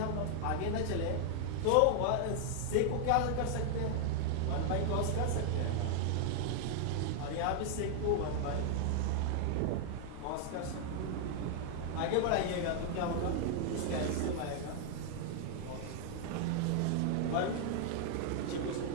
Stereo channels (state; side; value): different; both; correlation 0.00